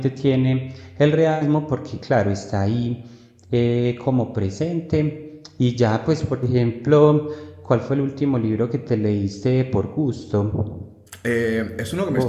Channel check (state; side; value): identical; both; correlation 1.00